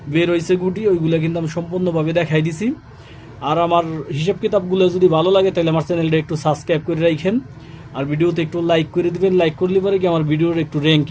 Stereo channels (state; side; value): identical; both; correlation 1.00